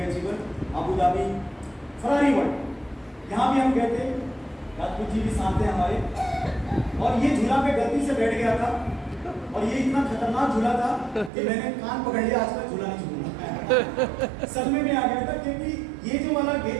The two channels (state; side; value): drops out; left; at 11.3 s